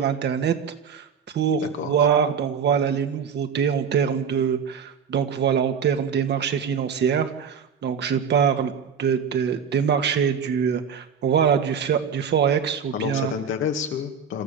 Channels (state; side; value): quieter; left; 6.4 dB